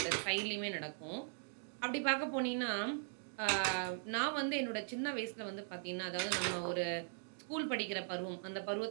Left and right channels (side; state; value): left; silent; digital silence